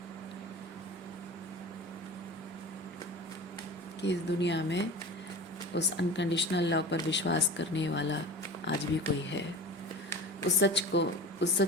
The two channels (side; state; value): both; normal; correlation 0.34